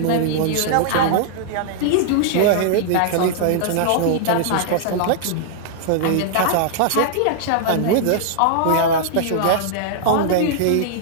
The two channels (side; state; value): both; different; correlation -0.01